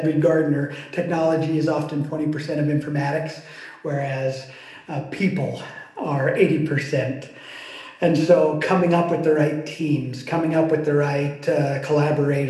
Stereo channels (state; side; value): identical; both; correlation 1.00